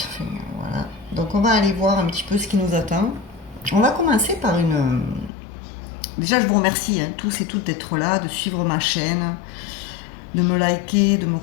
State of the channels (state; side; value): drops out; right; at 5.3 s